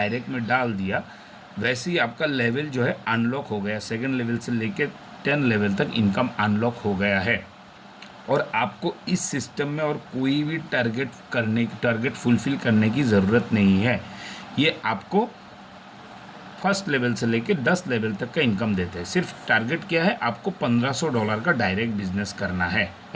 में डाल दिया, वैसे ही आपका लेवल जो है अनलॉक हो गया। 2nd लेवल से लेके 10 लेवल तक इनकम अनलॉक हो गया है। और आपको इस सिस्टम में और कोई भी टारगेट फुलफ़िल करने की ज़रूरत नहीं है। ये आपको फर्स्ट लेवल से लेके 10 लेवल तक का इनकम देते हैं। सिर्फ टारगेट क्या है? आपको $1500 का डायरेक्ट बिजनेस करना है,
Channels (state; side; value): identical; both; correlation 1.00